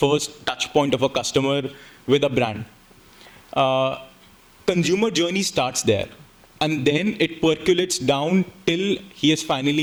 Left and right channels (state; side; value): identical; both; correlation 1.00